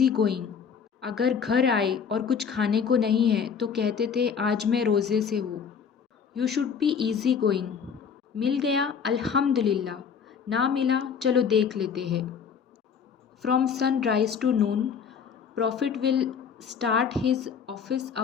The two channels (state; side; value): quieter; right; 6.7 dB